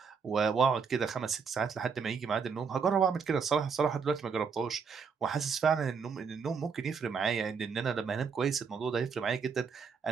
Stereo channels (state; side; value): quieter; left; 5.9 dB